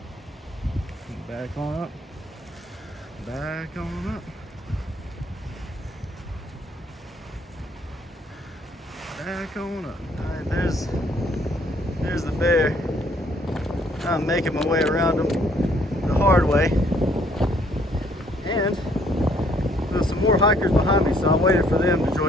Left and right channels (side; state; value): both; normal; correlation 0.65